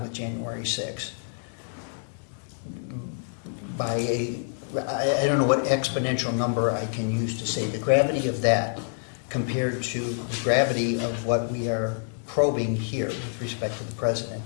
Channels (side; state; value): right; silent; digital silence